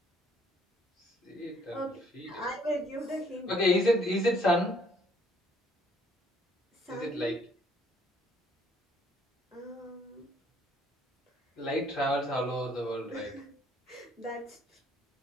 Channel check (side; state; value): both; normal; correlation 0.64